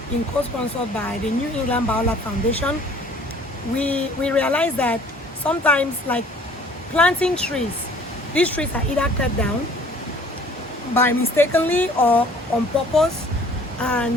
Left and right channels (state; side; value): normal; both; correlation 0.53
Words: been co-sponsored by the New England Biolab Foundation, we realize that sometimes, like planting trees, these trees are either cut down by mistakenly or on purpose,